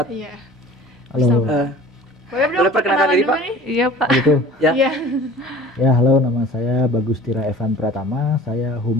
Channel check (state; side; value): normal; both; correlation 0.45